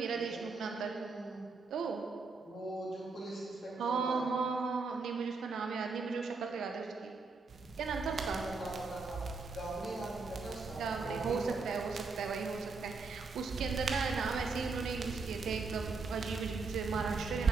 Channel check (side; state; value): left; quieter; 4.3 dB